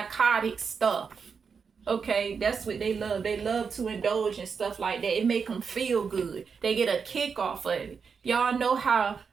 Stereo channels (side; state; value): left; quieter; 5.9 dB